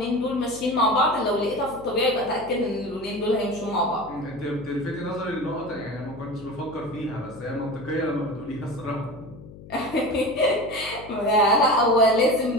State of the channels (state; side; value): noise; left; hum, 17 dB below the sound